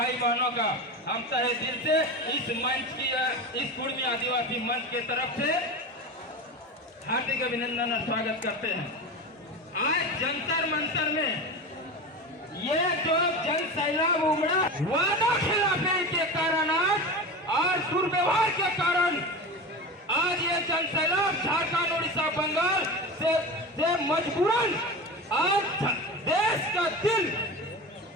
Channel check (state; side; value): normal; both; correlation 0.27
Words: बहनों का हम तहे दिल से इस मंच की, इस कुर्मी आदिवासी मंच के तरफ से हार्दिक अभिनंदन और स्वागत करते हैं। आज जंतर मंतर में ये जो जन सैलाब उमड़ा, वादा खिलाफी के कारण और दुर्व्यवहार के कारण आज ये जन सैलाब झारखंड, उड़ीसा, बंगाल से मजबूरन आज देश का दिल,